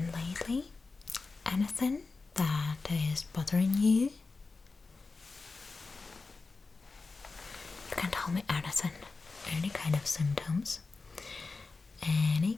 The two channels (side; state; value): right; quieter; 4.0 dB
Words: lately? Anything that is bothering you? You can tell me anything, any kind of symptoms, any